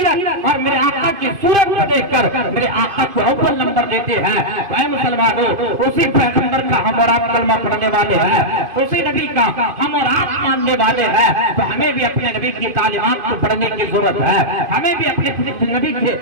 اور میرے آقا کی صورت کو دیکھ کر میرے آقا کو اول نمبر دیتے ہیں، اے مسلمانوں اسی پیغمبر کا ہم اور آپ کلمہ پڑھنے والے ہیں، اسی نبی کا ہم اور آپ ماننے والے ہیں، تو ہمیں بھی اپنے نبی کی تعلیمات کو پڑھنے کی ضرورت ہے، ہمیں بھی اپنے نبی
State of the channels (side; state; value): left; late; 2.5 ms